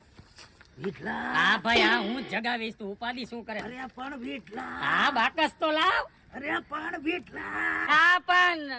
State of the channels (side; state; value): both; identical; correlation 1.00